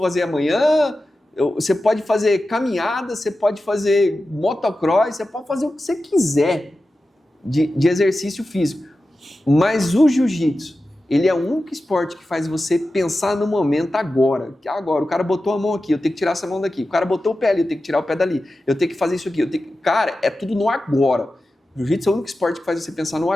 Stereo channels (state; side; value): normal; both; correlation 0.93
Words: amanhã. Você pode fazer caminhada, você pode fazer motocross, você pode fazer o que você quiser de exercício físico. Mas o jiu-jitsu, ele é o único esporte que faz você pensar no momento agora. Agora, o cara botou a mão aqui, eu tenho que tirar essa mão daqui. O cara botou o pé ali, eu tenho que tirar o pé dali. Eu tenho que fazer isso aqui. Cara, é tudo no agora. O jiu-jitsu é o único esporte que faz você pensar no